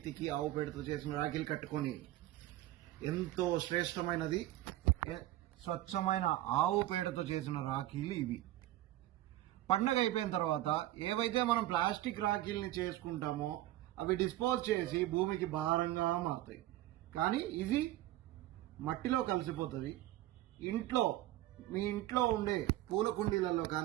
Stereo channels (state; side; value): quieter; left; 15.2 dB